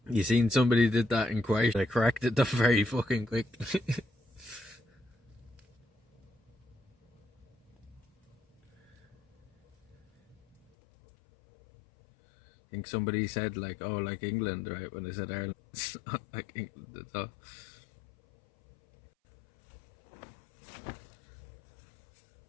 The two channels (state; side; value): drops out; right; at 10.6 s